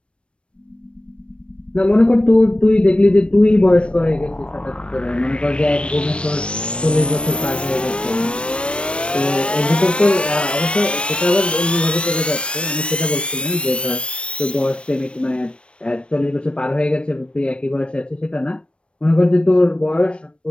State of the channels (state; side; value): late; right; 0.059 ms